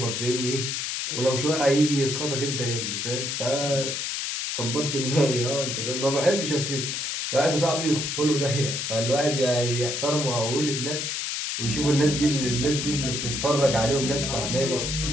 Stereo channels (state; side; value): noise; left; hiss, 2 dB below the sound